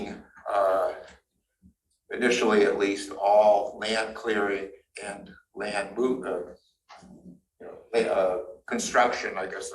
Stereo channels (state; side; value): identical; both; correlation 1.00